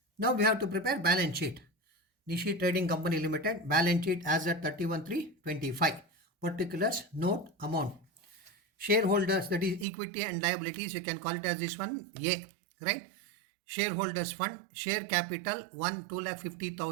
Now we have to prepare balance sheet. Nishi Trading Company Limited balance sheet as at 31/3/25. Particulars, note, amount. Shareholders, that is equity and liabilities, you can call it as this one A, right? Shareholders fund, share capital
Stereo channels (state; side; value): drops out; left; at 9.9 s